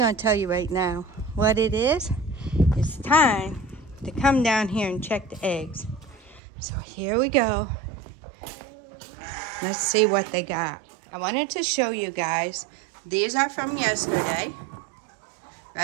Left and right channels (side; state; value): left; drops out; at 6.4 s